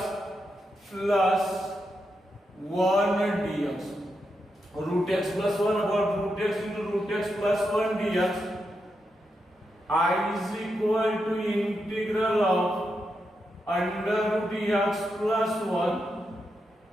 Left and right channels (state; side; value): normal; both; correlation 0.85